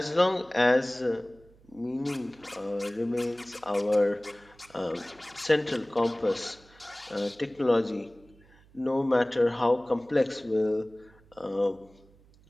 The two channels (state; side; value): noise; right; hum, 28 dB below the sound